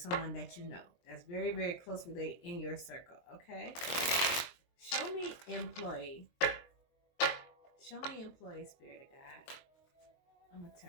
that you know that's very, very close related in your circle, okay? Show me employee. Show me employee, Spirit of God. I'm going to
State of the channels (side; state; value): right; late; 23 ms